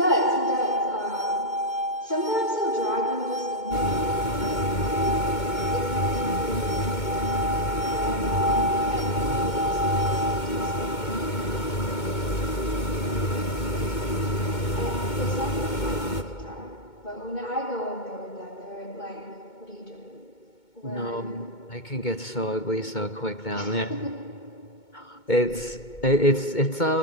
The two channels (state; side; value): late; right; 2.2 ms